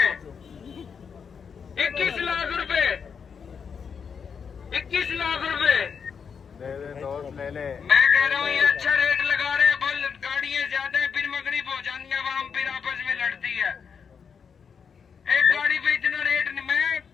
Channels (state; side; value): quieter; right; 6.4 dB